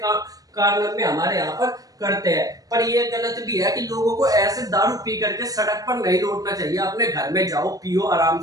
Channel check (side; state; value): left; late; 0.18 ms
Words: कारण में हमारे यहाँ पर करते हैं। पर ये गलत भी है कि लोगों को ऐसे दारू पी करके सड़क पर नहीं लौटना चाहिए। अपने घर में जाओ, पियो, आराम